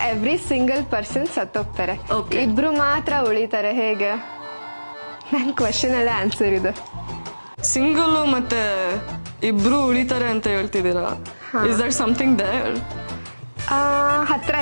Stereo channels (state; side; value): inverted; both; correlation -1.00